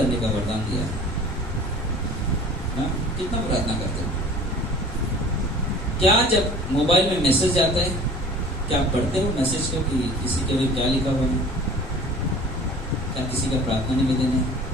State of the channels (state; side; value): normal; both; correlation 0.45